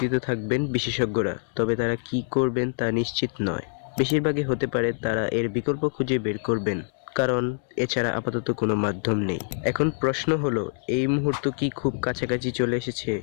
থাকবেন বিশেষজ্ঞরা, তবে তারা কি করবেন তা নিশ্চিত নয়। বেশিরভাগই হতে পারে তারা এর বিকল্প খুঁজে বের করবেন, কারণ এছাড়া আপাতত কোনো মাধ্যম নেই। এখন প্রশ্ন হলো, এই মুহূর্ত কি খুব কাছাকাছি চলে এসেছে?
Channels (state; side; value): silent; right; digital silence